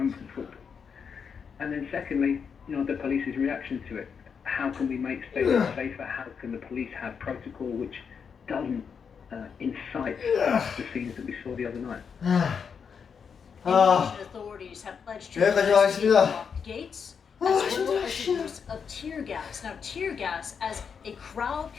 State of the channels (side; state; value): right; quieter; 6.5 dB